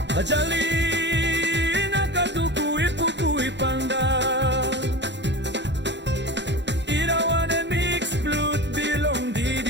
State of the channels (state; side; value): late; left; 0.52 ms